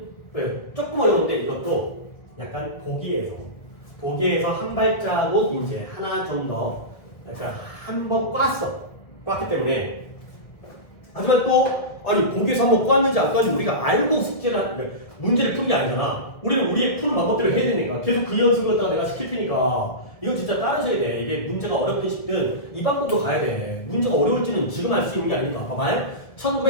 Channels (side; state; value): right; late; 1.5 ms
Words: 조금 어려운데 이것도 약간 보기에서 한 발자국 이제 하나 좀 더 약간 한 번 꽈기 때문에. 하지만 또 아니 보기에서 한번 꽈는지 안 꽈는지 우리가 알고 문제를 푸는 게 아니잖아. 우리는 우리의 푸는 방법대로 해야 되니까 계속 그 연습을 갖다가 내가 시킬 테니까 이건 진짜 따라줘야 돼. 이게 문제가 어렵든 쉽든 이 방법으로 가야 돼. 문제가 어려울지는 지금 알 수 있는 게 아니니까. 봐봐요.